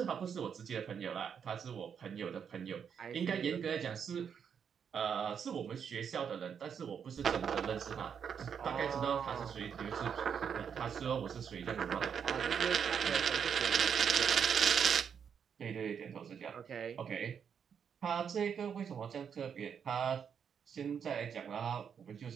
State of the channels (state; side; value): quieter; left; 7.4 dB